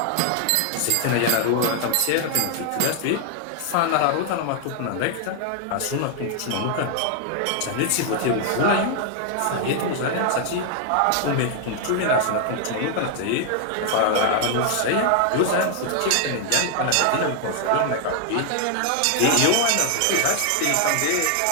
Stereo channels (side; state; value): both; different; correlation 0.00